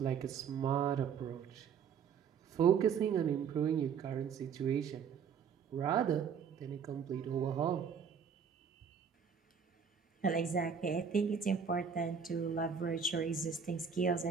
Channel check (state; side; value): quieter; left; 6.8 dB